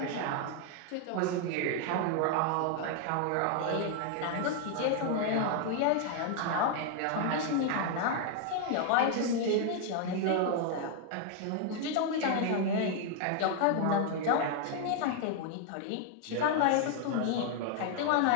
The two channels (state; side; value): different; both; correlation 0.00